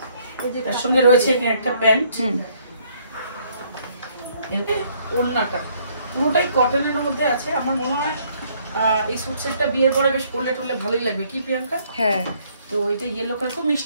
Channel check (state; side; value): inverted; both; correlation -0.65